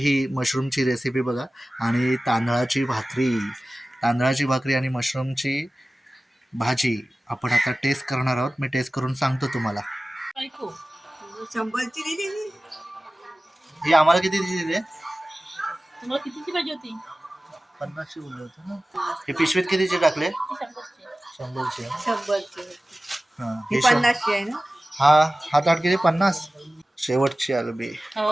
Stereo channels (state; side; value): normal; both; correlation 0.97